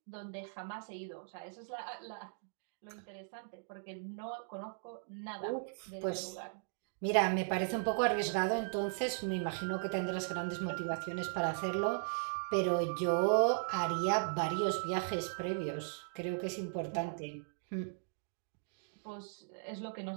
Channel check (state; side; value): silent; left; digital silence